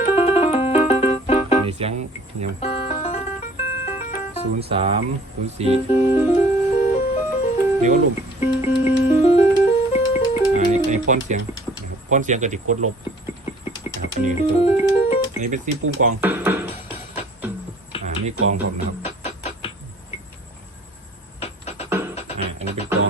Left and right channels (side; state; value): both; normal; correlation 0.53